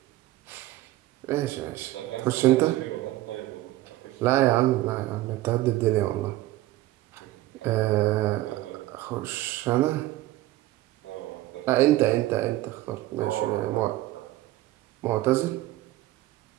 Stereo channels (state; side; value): quieter; left; 16.5 dB